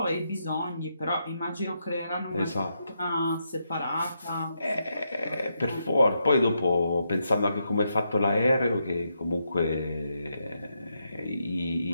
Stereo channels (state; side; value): inverted; both; correlation -0.81